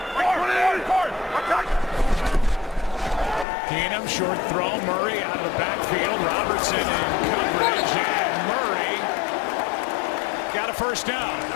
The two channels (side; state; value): right; drops out; at 3.5 s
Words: Keenum, short throw. Murray out of the backfield. Robertson in coverage, and Murray got a first down.